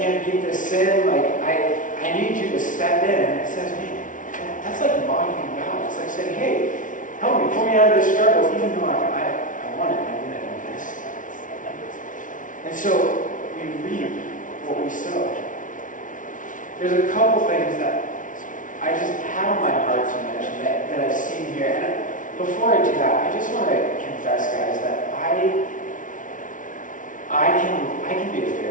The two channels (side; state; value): right; late; 0.38 ms